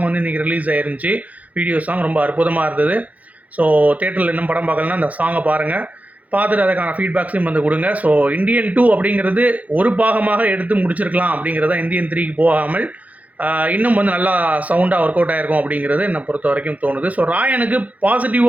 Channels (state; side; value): late; left; 0.073 ms